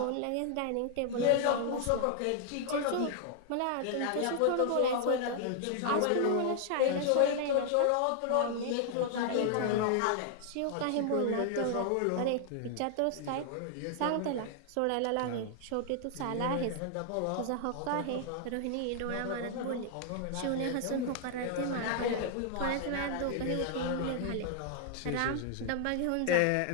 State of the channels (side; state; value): both; different; correlation 0.00